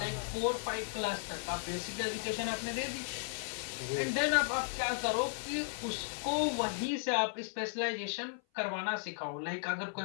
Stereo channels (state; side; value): silent; right; 54 dB below the other